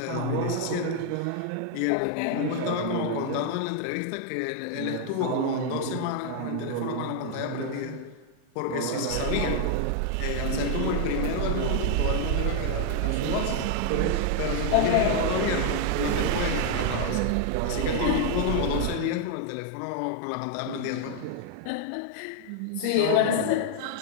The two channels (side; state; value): both; different; correlation 0.00